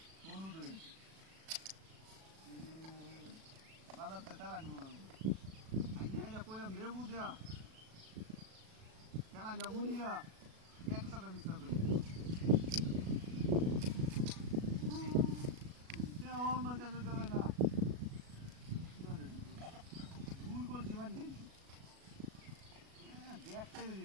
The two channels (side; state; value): left; late; 37 ms